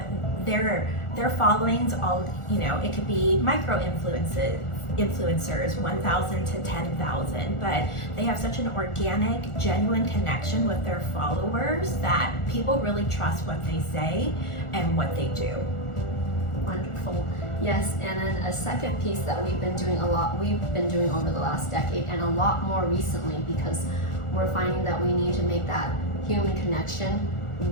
Their followings, it could be micro influencers, 1,000 to 10,000, but they have such an organic, genuine connection with their followers that people really trust what they say and what they do. Wonderful. Yes, and then a second piece that we've been doing over the last decade, and a lot more recently, because we're finding that we need to make that human connection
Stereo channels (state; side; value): late; right; 1.4 ms